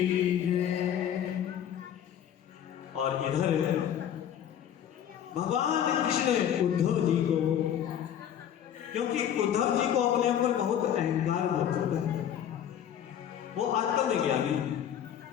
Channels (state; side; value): quieter; right; 9.8 dB